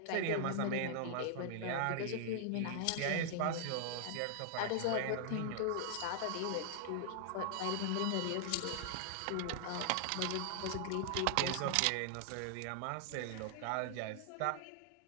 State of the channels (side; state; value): both; different; correlation 0.00